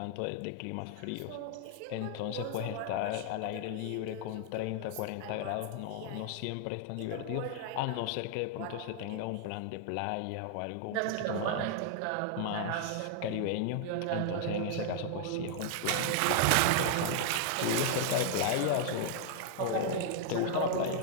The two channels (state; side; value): different; both; correlation 0.00